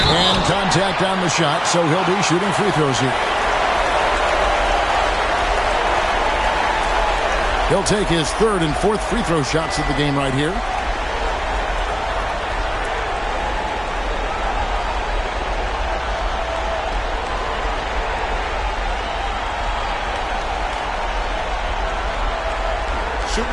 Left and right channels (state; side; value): identical; both; correlation 1.00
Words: And contact on the shot, so he'll be shooting free throws here. He'll take his 3rd and 4th free throw shots of the game right here.